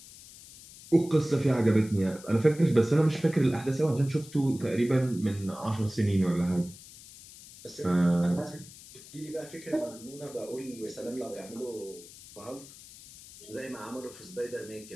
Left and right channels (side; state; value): left; noise; hiss, 18 dB below the sound